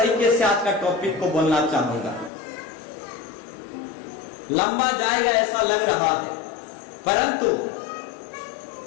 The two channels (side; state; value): right; drops out; at 2.3 s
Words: से आज का टॉपिक को बोलना चाहूंगा, लंबा जाएगा ऐसा लग रहा है, परंतु